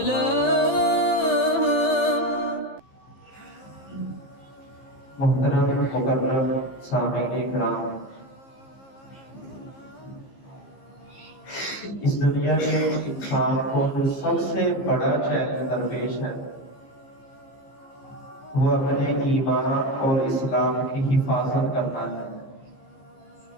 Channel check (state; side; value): late; right; 15 ms